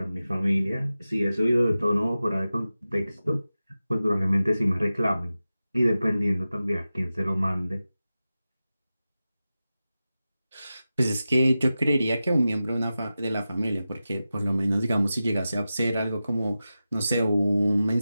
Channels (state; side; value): inverted; both; correlation -0.94